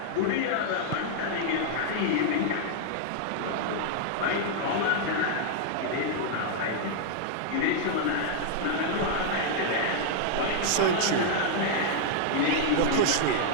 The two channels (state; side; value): different; both; correlation -0.01